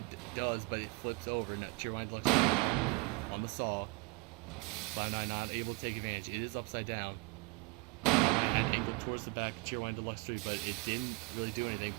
does, but it flips over. Now Cheerwine Deluxe 3 on the saw. Cloud9 not able to take advantage. It is upside down. And angled towards the back of Cheerwine Deluxe 3, but it didn't really do anything.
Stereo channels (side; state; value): left; quieter; 28.2 dB